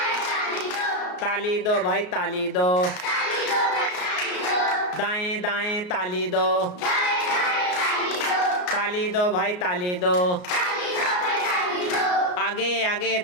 ताली दो भाई ताली दो, दाएं दाएं ताली दो, ताली दो भाई ताली दो, आगे आगे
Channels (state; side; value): late; right; 33 ms